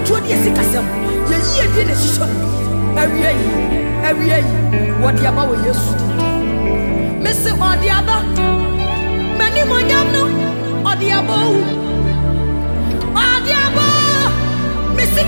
the Sikasam. Ye year did a show. Every year. What the Abba will use. Mr. Odiaba, many more no, Odiabo, Odiabo, Mr.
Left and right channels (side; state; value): both; inverted; correlation -1.00